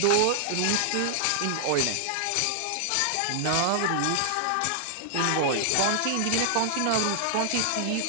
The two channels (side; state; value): both; different; correlation 0.00